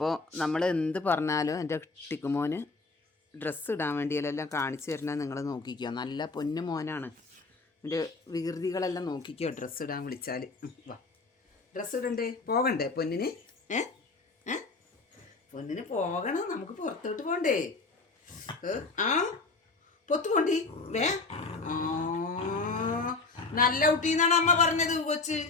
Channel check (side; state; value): right; quieter; 3.8 dB